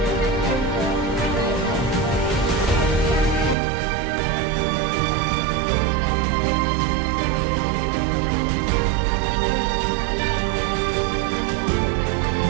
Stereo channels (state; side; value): drops out; left; at 3.6 s